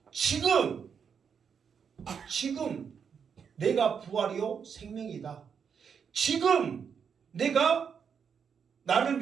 지금 내가 부활이요 생명이다. 지금 내가 나를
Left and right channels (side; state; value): left; quieter; 6.9 dB